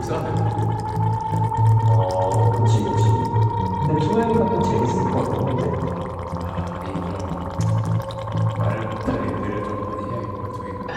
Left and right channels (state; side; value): identical; both; correlation 1.00